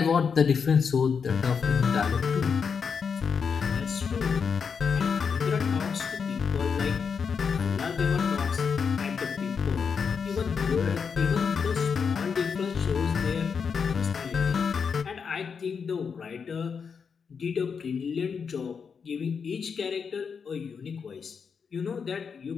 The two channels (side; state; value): right; quieter; 6.1 dB